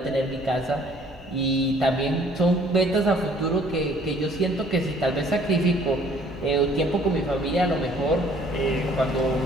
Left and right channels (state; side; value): normal; both; correlation 0.57